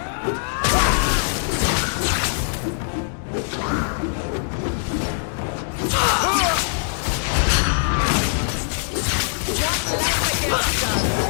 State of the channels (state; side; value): silent; right; digital silence